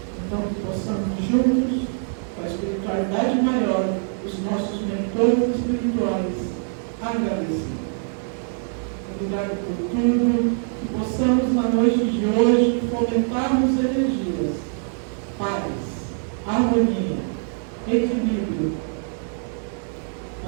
Então, que possamos juntos, com a espiritualidade maior, os nossos mentores espirituais, agradecer. Obrigado por tudo, que possamos na noite de hoje fomentarmos energias, paz, harmonia, equilíbrio,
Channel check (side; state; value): left; silent; 63 dB below the other